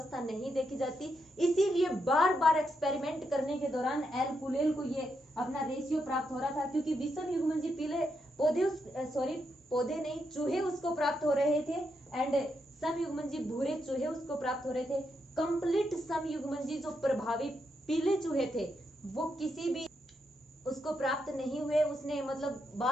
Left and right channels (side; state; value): both; normal; correlation 0.82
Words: नहीं देखी जाती, इसीलिए बार बार एक्सपेरिमेंट करने के दौरान एल कुलेल को ये अपना रेशियो प्राप्त हो रहा था, क्योंकि विषम युग्मनजी पीले पौधे नहीं, चूहे उसको प्राप्त हो रहे थे, एंड समयुग्मनजी भूरे चूहे उसको प्राप्त हो रहे थे। कंप्लीट समयुग्मनजी जो प्रभावी पीले चूहे थे वो किसी भी उसको प्राप्त नहीं हुए। उसने मतलब